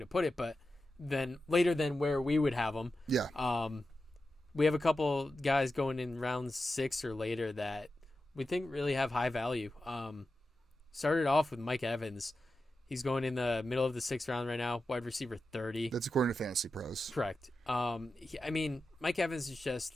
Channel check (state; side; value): normal; both; correlation 0.91